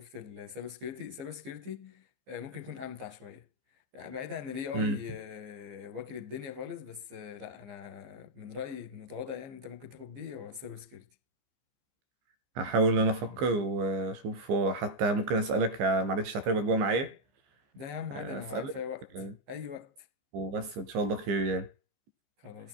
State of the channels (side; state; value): left; late; 15 ms